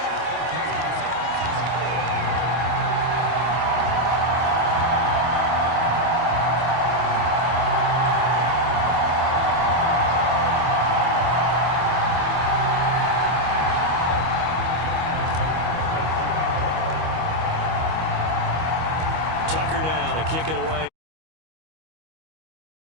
Tucker now to kick it away.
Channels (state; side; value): late; left; 25 ms